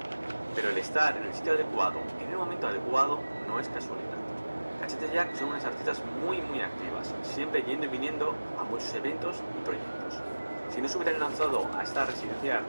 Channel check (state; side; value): inverted; both; correlation -1.00